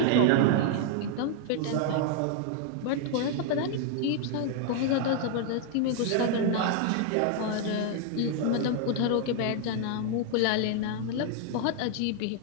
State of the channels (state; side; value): different; both; correlation 0.00